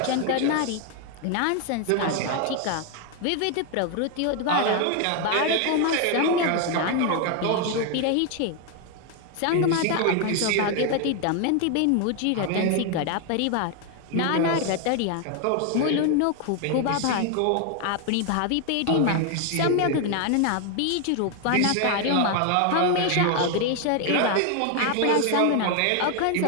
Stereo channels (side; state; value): both; different; correlation 0.01